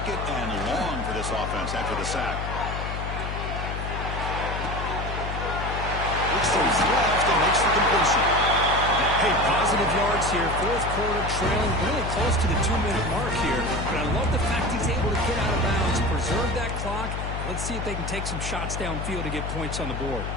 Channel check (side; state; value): left; noise; hum, 4 dB below the sound